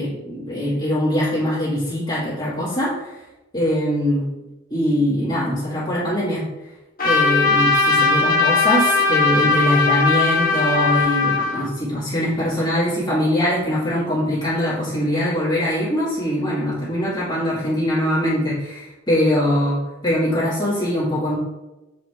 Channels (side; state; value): both; normal; correlation 0.44